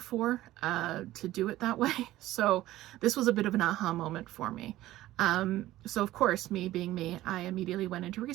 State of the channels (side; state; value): left; quieter; 15.6 dB